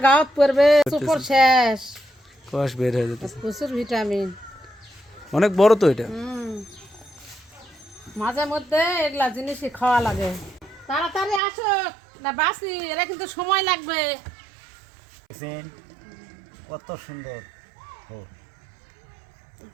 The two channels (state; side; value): drops out; left; at 11.4 s